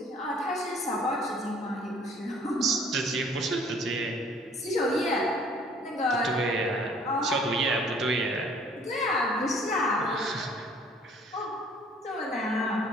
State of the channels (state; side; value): normal; both; correlation 0.56